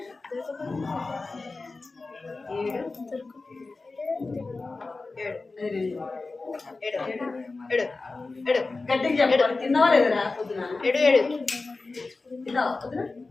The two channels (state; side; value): quieter; right; 3.7 dB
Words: గట్టిగా చెప్పాలి. తిన్నావా లేదరా పొద్దున? తిన్నావా పొద్దున?